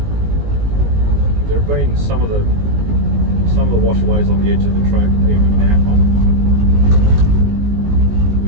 There have been some of the washaways on the edge of the track even now,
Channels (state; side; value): late; left; 19 ms